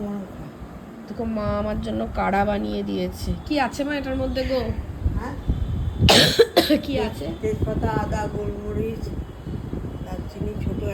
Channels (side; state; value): both; identical; correlation 1.00